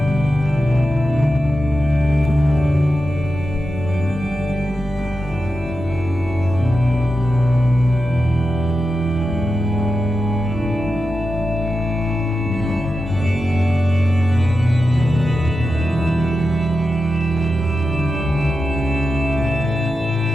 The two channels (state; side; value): normal; both; correlation 0.89